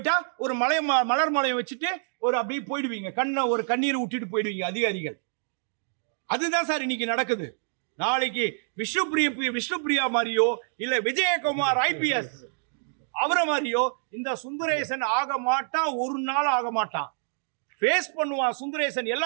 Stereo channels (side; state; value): left; silent; digital silence